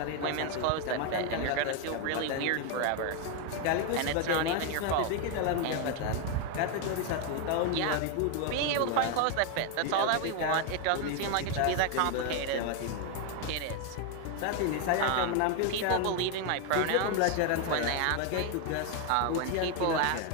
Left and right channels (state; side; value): different; both; correlation 0.01